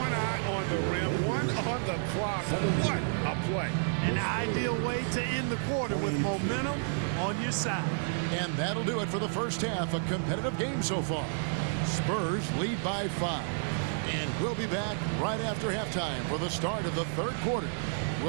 eye on the rim, one on the clock. What a play. An ideal way to end the quarter with momentum on your side. And that'll do it for the first half. A competitive game so far. Spurs lead by 5. And we'll be back right after halftime for the start of the third quarter.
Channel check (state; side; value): silent; left; digital silence